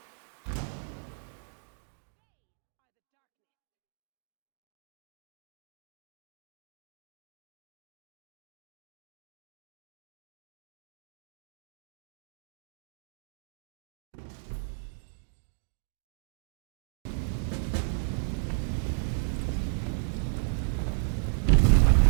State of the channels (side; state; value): left; silent; digital silence